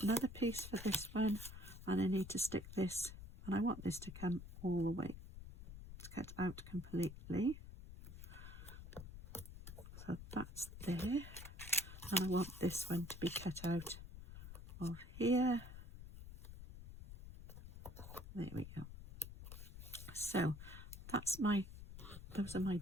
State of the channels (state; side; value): noise; left; rumble, 12 dB below the sound